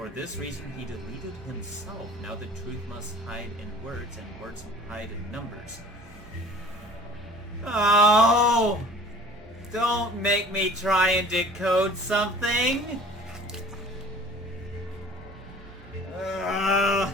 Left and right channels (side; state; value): both; normal; correlation 0.46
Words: this reason he deleted himself. Now the truth must hide in words, and words hide in numbers. Oh! Don't make me try and decode something!